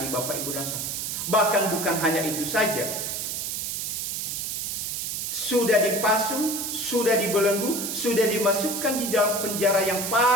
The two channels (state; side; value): noise; right; hiss, 3 dB below the sound